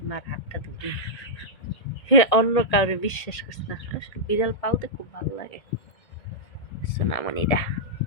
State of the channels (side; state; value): right; late; 1.8 ms